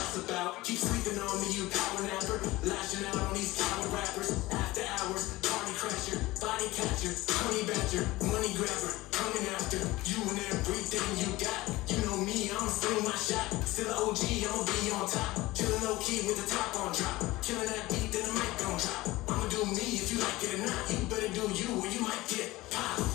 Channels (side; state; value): right; quieter; 19.1 dB